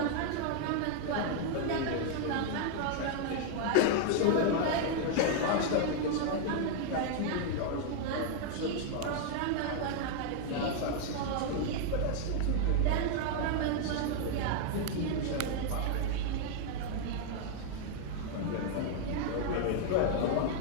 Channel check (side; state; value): both; different; correlation 0.00